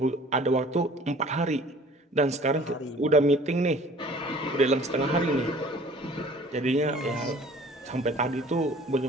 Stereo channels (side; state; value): both; normal; correlation 0.50